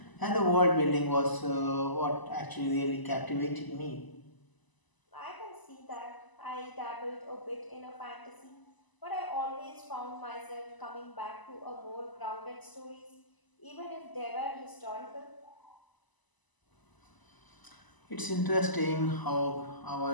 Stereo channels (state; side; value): late; right; 1.0 ms